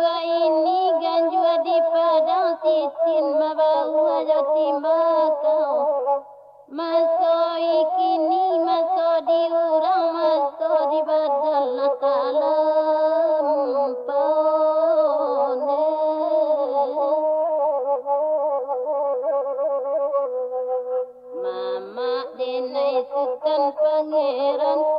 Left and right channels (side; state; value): both; identical; correlation 1.00